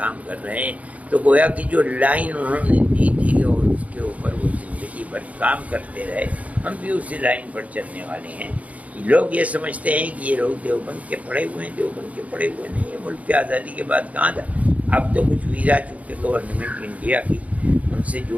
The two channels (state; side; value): late; left; 0.069 ms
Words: کر رہے ہیں۔ تو گویا کہ جو لائن انہوں نے دی تھی اور اس کے اوپر وہ زندگی بھر کام کرتے رہے، ہم بھی اسی لائن پر چلنے والے ہیں۔ لوگ یہ سمجھتے ہیں کہ یہ لوگ دیوبند کے پڑھے ہوئے ہیں، دیوبند کے پڑھے ہوئے نہیں ہیں۔ ملک کی آزادی کے بعد کہاں تھا؟ اب تو کچھ ویزا چونکہ گورنمنٹ انڈیا کی ان سے